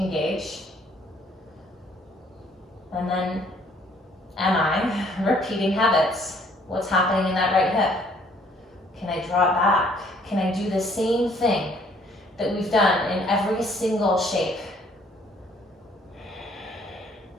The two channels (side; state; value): both; normal; correlation 0.62